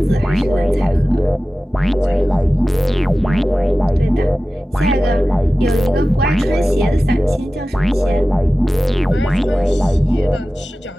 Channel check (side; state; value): both; normal; correlation 0.95